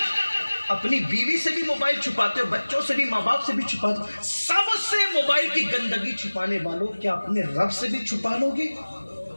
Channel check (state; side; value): inverted; both; correlation -1.00